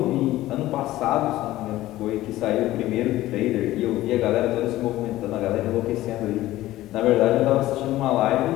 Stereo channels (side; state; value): right; quieter; 15.8 dB